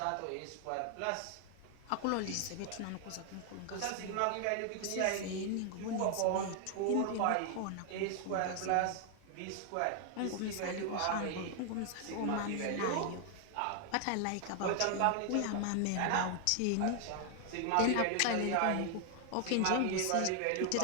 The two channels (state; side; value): different; both; correlation 0.00